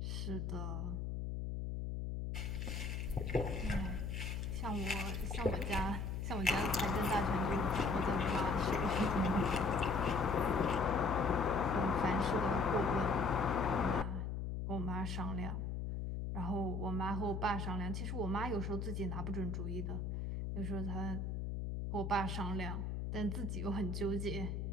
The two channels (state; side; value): noise; left; hum, 2 dB below the sound